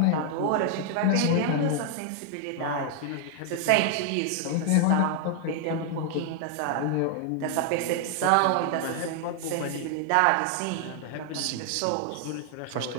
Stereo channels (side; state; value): both; different; correlation 0.00